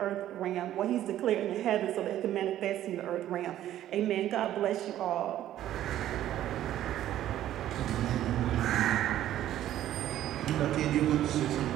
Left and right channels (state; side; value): quieter; left; 12.5 dB